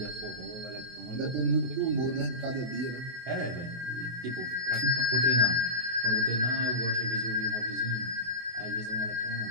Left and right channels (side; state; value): left; late; 24 ms